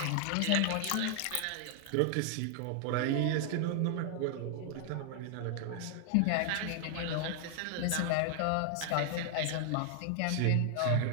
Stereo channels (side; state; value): both; different; correlation 0.00